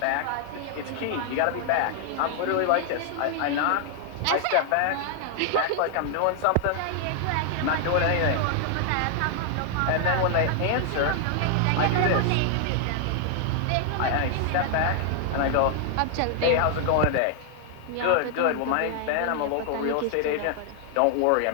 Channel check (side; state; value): both; different; correlation 0.00